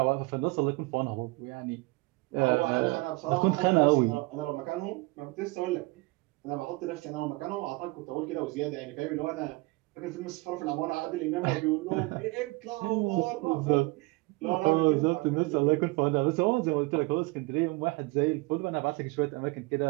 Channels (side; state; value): left; quieter; 24.0 dB